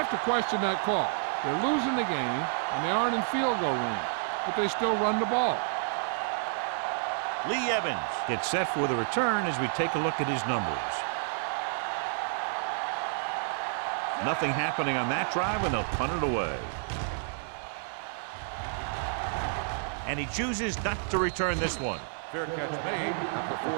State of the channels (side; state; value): left; silent; digital silence